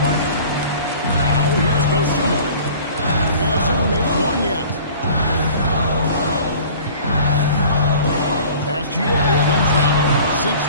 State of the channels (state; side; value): inverted; both; correlation -0.46